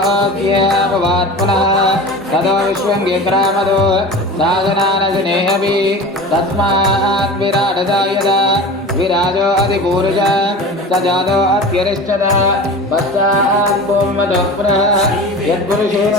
पुनः ततो विश्वङ्गिक्रामदो साधनानशनेऽपि तस्मात् विराटदा यदा विराजो अधिपूरुषः स जातो अत्यरिष्टः पश्चात् भूमदः पुनः यत्पुरुषेण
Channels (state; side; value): normal; both; correlation 0.34